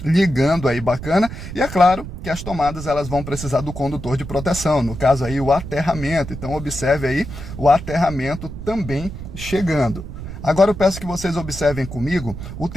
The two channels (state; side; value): noise; right; rumble, 10 dB below the sound